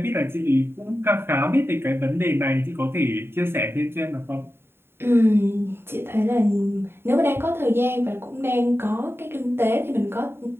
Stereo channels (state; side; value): late; left; 0.11 ms